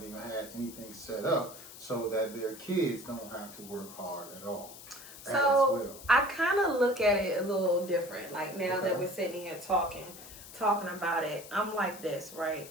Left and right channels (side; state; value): left; noise; hiss, 16 dB below the sound